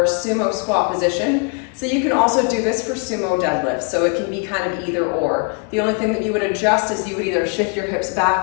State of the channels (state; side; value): quieter; right; 33.6 dB